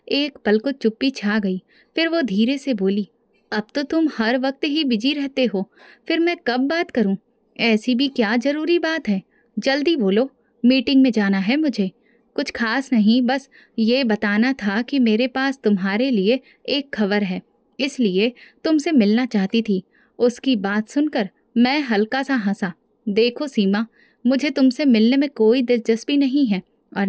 एक पल को चुप्पी छा गई। फिर वो धीरे से बोली, अब तो तुम हर वक्त ही बिजी रहते हो, फिर मैं कब बात करूं? ऐसी भी क्या जरूरी बात है? जल्दी बोलो, मीटिंग में जाना है मुझे। कुछ खास नहीं, बस ये बताना था कि मेरे पास तुम्हारे लिए एक खबर है, इसलिए तुमसे मिलना चाहती थी। उसकी बात सुनकर मैं हल्का सा हंसा। देखो सीमा, मुझे तुमसे मिलने में कोई दिलचस्पी नहीं है और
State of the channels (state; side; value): identical; both; correlation 1.00